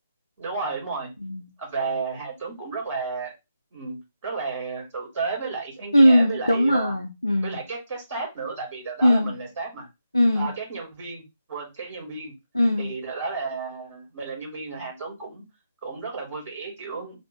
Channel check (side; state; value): both; inverted; correlation -0.87